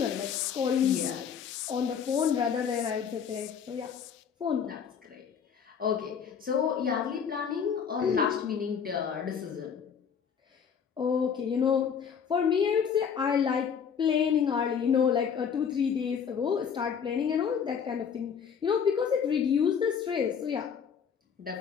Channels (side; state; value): right; quieter; 7.2 dB